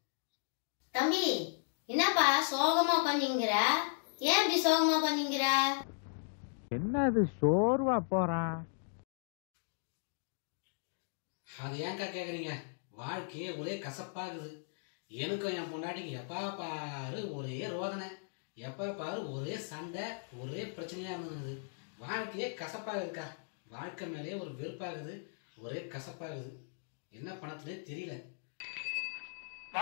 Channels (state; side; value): silent; right; digital silence